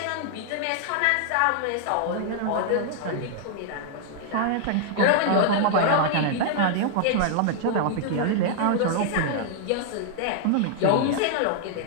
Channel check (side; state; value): both; different; correlation -0.01